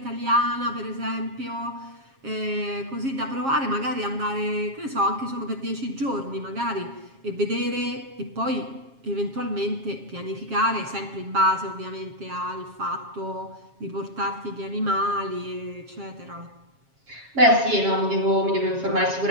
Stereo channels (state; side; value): late; left; 7.4 ms